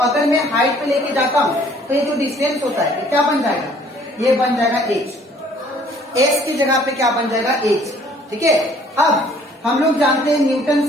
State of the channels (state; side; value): normal; both; correlation 0.58